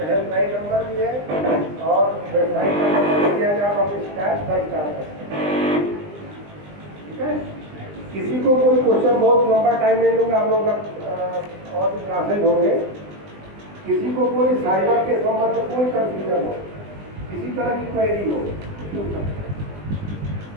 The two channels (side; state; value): left; late; 20 ms